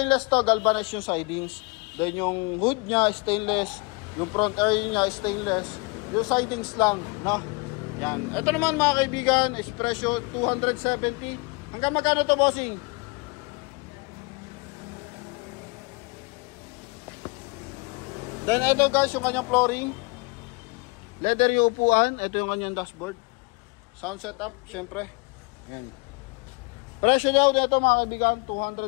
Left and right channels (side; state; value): right; quieter; 29.1 dB